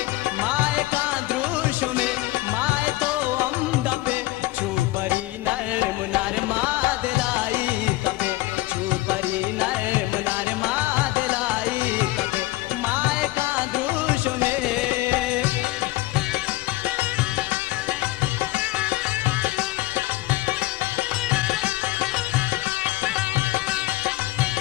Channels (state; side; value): quieter; right; 19.0 dB